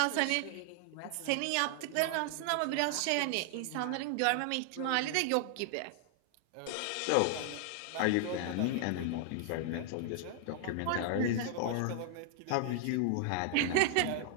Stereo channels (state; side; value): different; both; correlation 0.00